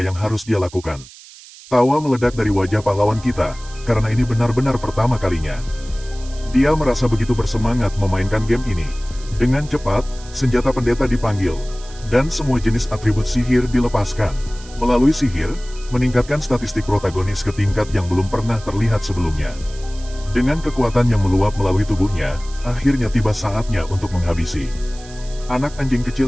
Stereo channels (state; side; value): noise; right; hiss, 20 dB below the sound